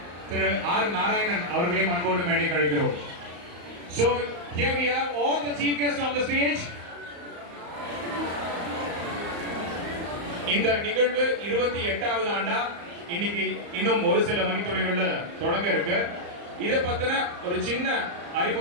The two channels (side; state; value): left; late; 35 ms